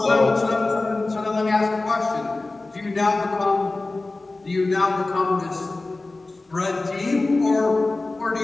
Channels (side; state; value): right; quieter; 3.2 dB